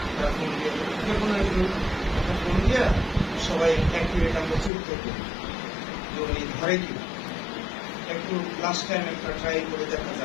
তার ফোন দিয়ে, যে কোনো একজন ফোন দিয়ে সবাই এক মিনিট আমরা চুক্তি করি যে উনি ধরে কিনা, একটু লাস্ট টাইম একটা ট্রাই করে দেখা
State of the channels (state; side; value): drops out; right; at 4.7 s